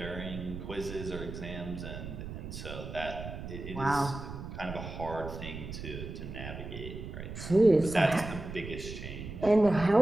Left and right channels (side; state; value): right; noise; rumble, 9 dB below the sound